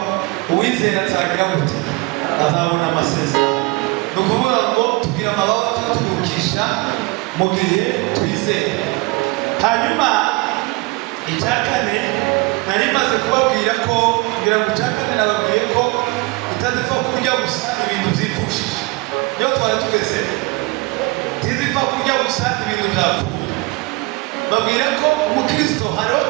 uwizera azagira gute? Azabona amasezerano. Ni ukuvuga ngo tugira amababa tutugurukisha mu gihe twizera. Hanyuma icya kane nari maze kubabwira ko, ngira ngo icya kane nababwiye ko itazipfa kurya gusa ibintu byipfushije. Iyo twari tugeze ntizipfa kurya gusa ibintu byapfuye. Babwira ko umukristo hariho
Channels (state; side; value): quieter; left; 24.3 dB